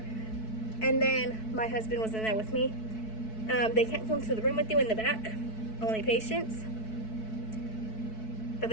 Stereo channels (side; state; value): right; late; 4.6 ms